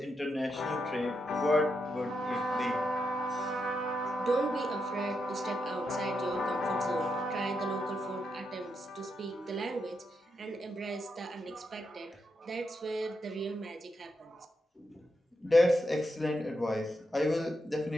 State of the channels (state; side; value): normal; both; correlation 0.84